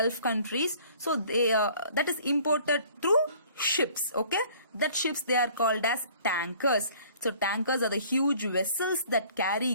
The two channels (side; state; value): both; inverted; correlation -0.53